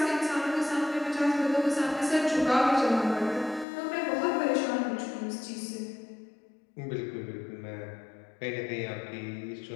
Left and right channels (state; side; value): drops out; right; at 3.7 s